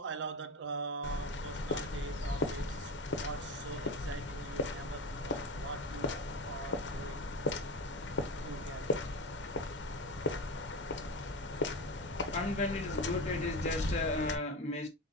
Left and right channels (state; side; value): normal; both; correlation 0.23